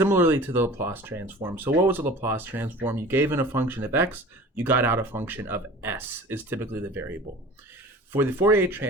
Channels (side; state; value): both; normal; correlation 0.42